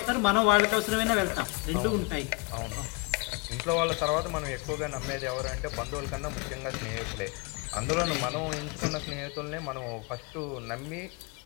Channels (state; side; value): quieter; right; 28.2 dB